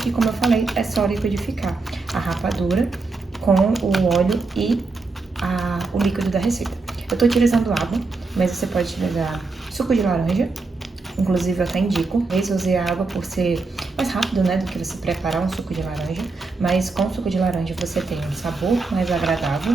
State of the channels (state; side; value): quieter; left; 3.9 dB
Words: como eu falei, é só liquidificar a rapadura com o óleo e o líquido da receita. Eu tô utilizando água, mas você pode utilizar suco de laranja. Inclusive, eu até indico. Eu usei a água por ser mais rápido, né, do que você preparar um suco de laranja. Mas com o suco de laranja você tem um sabor mais agradável